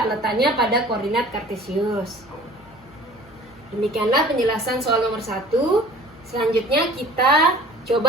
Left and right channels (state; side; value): noise; left; hum, 24 dB below the sound